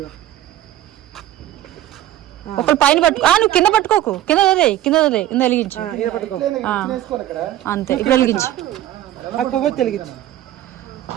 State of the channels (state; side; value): quieter; left; 13.3 dB